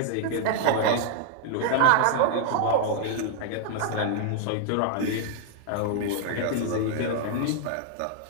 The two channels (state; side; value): different; both; correlation 0.00